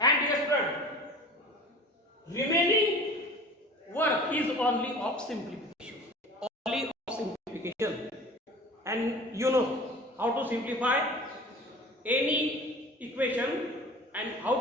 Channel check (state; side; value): normal; both; correlation 0.41